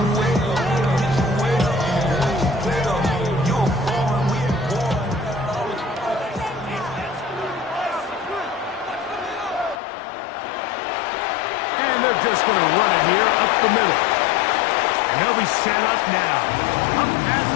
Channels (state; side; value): drops out; right; at 9.8 s